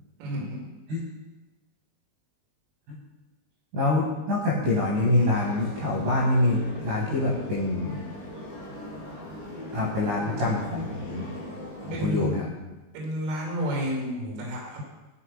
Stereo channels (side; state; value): left; late; 20 ms